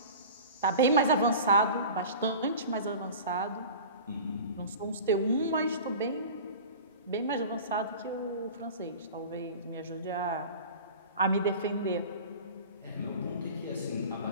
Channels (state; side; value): inverted; both; correlation -0.37